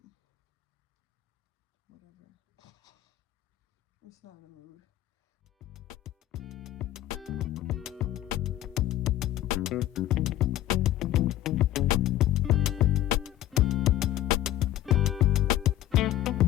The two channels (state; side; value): quieter; right; 13.7 dB